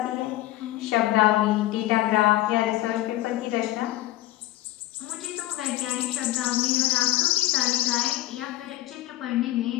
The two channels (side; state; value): right; quieter; 16.1 dB